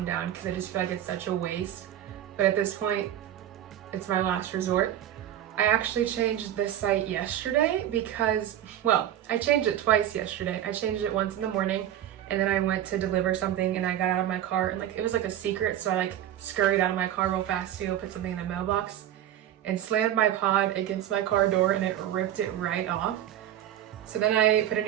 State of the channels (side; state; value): left; quieter; 11.4 dB